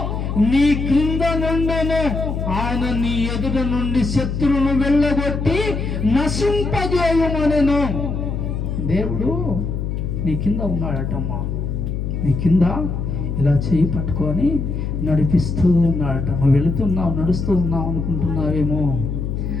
నీ క్రింద నుండును. ఆయన నీ ఎదుట నుండి శత్రువును వెళ్ళగొట్టి నశింపజేయుమనెను. దేవుడు నీ కింద ఉన్నాడటమ్మా. నీ కింద ఇలా చేయి పట్టుకొని నడిపిస్తూ ఉన్నాడట. నువ్వు వెళుతున్నావు, నడుస్తూ ఉన్నావు అనుకుంటున్నావేమో.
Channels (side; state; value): left; noise; hum, 3 dB below the sound